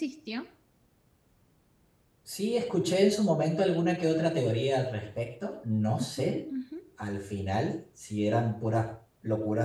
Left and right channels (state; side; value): identical; both; correlation 1.00